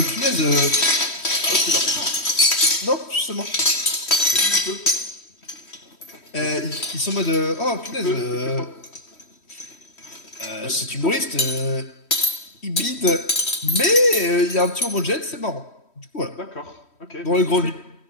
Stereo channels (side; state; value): right; late; 3.1 ms